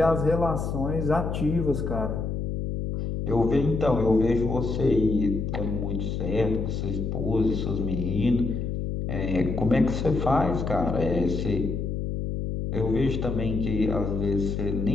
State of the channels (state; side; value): noise; left; hum, 3 dB below the sound